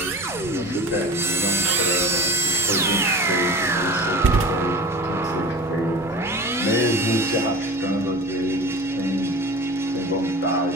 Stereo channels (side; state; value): both; normal; correlation 0.37